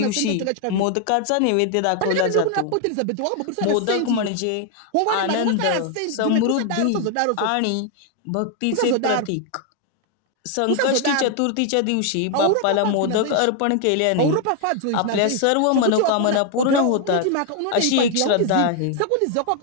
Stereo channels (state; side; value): different; both; correlation 0.00